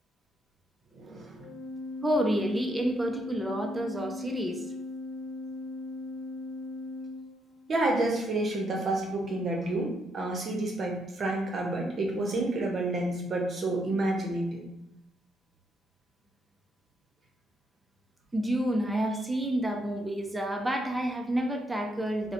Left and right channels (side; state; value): both; normal; correlation 0.76